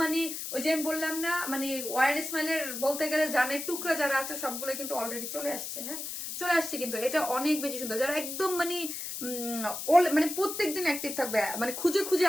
মানে ওই যে আমি বললাম না মানে ওয়ার স্মাইলের বলতে গেলে জানের টুকরা যারা আছে সবগুলো কিন্তু অলরেডি চলে আসছে। হ্যাঁ, চলে আসছে, কিন্তু এটা অনেক বেশি সুন্দর। যারা একদম মানে মানে প্রত্যেকদিন অ্যাক্টিভ থাকবে, মানে খুঁজে খুঁজে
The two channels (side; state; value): left; noise; hiss, 6 dB below the sound